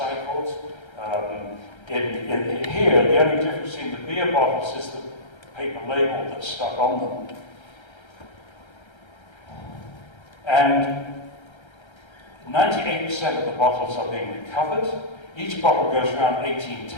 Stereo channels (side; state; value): right; late; 1.3 ms